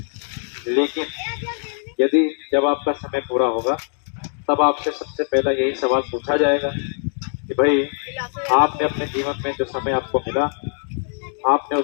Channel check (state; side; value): silent; right; 56 dB below the other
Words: लेकिन यदि जब आपका समय पूरा होगा तब आपसे सबसे पहला यही सवाल पूछा जाएगा कि भाई आपने अपने जीवन में जो समय आपको मिला, आपने